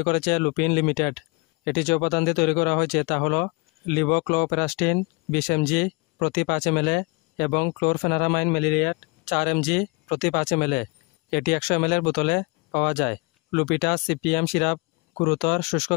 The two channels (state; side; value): quieter; right; 28.0 dB